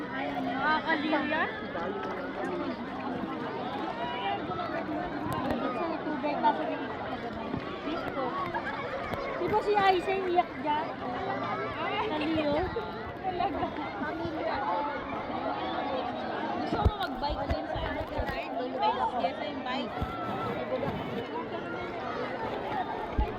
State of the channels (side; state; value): both; identical; correlation 1.00